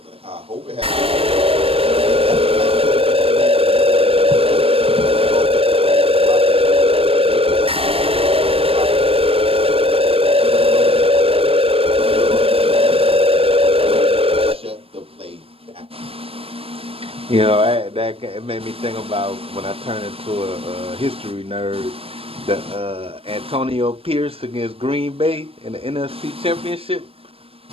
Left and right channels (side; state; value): left; late; 0.28 ms